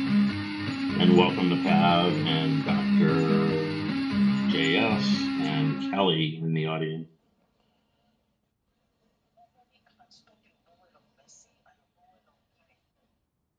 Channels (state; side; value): identical; both; correlation 1.00